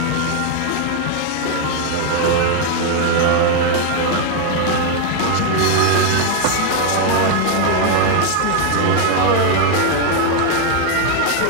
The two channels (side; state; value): both; different; correlation 0.01